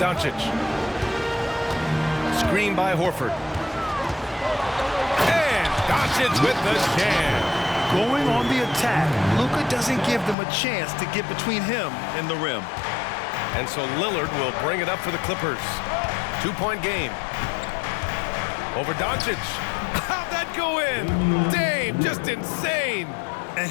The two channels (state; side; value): drops out; right; at 10.4 s